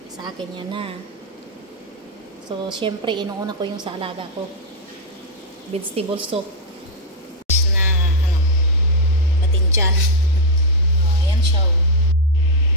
Sa akin yan na. So, syempre, inuuna ko yung sa alaga ko. Vegetable soup. Na, batinjan. Ayan siya.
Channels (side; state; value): both; normal; correlation 0.00